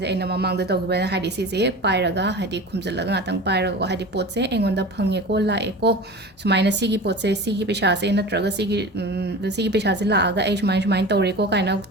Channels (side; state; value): both; normal; correlation 0.34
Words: je aina mamang da tawgiba haidi si se pairaga haidi khumjalaga ngatang pairaga ko haidi pot se engonda phange ko la eko sumaina sigi pot se sigi pesha se natraga sigi pesha se la aga ai sumain tawre ko kaina